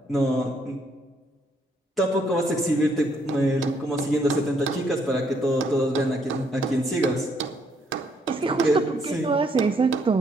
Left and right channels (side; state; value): both; normal; correlation 0.70